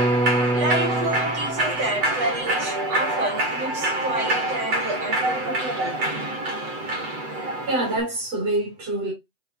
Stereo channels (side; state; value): left; late; 8.0 ms